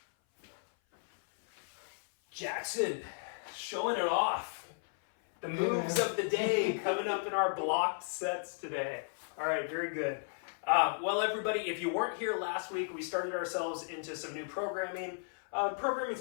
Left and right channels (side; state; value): right; silent; 55 dB below the other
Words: Jackson showing it off. The moves of the day coming up in our blocked sets today. All right, very good. Well, everybody, if you weren't here last week, we started ourselves into some new programming. Programming